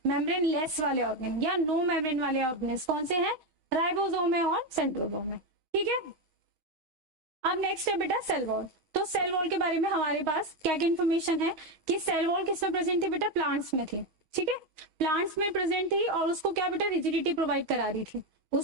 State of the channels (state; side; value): late; left; 6.3 ms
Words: मेम्ब्रेन लेस वाले ऑर्गेन या नो मेम्ब्रेन वाले ऑर्गेन्स कौन से हैं, राइबोसोम है और सेंट्रोसोम है, ठीक है। अब नेक्स्ट है बेटा सेल वॉल। तो सेल वॉल के बारे में हमारे पास क्या क्या इन्फॉर्मेशन है कि सेल वॉल किसमें प्रेजेंट थी बेटा, प्लांट्स में थी, ठीक है, प्लांट्स में प्रेजेंट थी, और उसको क्या बेटा रिजिडिटी प्रोवाइड करा रही थी,